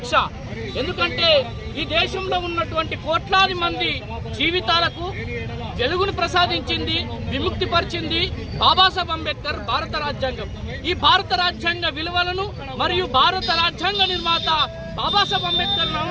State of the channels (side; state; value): both; identical; correlation 1.00